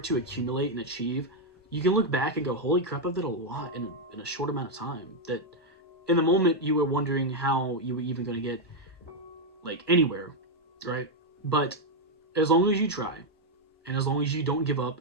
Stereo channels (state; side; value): normal; both; correlation 0.01